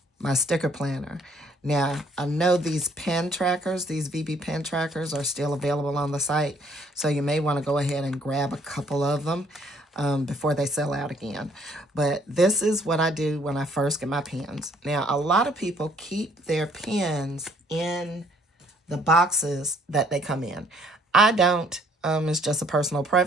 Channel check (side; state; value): both; normal; correlation 0.63